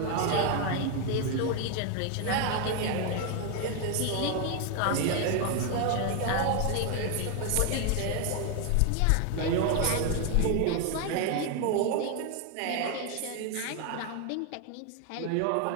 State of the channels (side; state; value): both; different; correlation 0.01